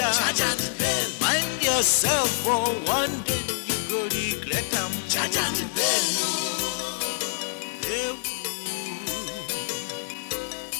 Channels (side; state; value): right; silent; 59 dB below the other